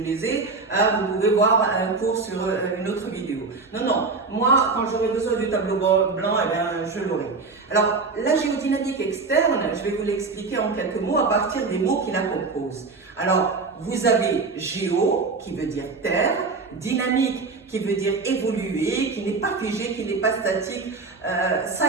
ai, vous pouvez voir un cours sur une autre vidéo. Non, moi quand j'aurai besoin du tableau blanc, eh bien, je l'aurai. Alors la géodynamique externe, je vais vous l'expliquer en quelques mots à partir des mots qui la composent. Alors vous avez géo qui veut dire terre, dynamique qui veut dire évoluer, qui n'est pas figé, qui n'est pas statique,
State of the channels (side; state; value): left; quieter; 4.2 dB